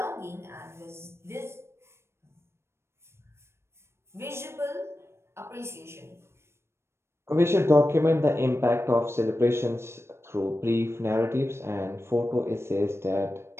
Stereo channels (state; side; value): late; left; 0.12 ms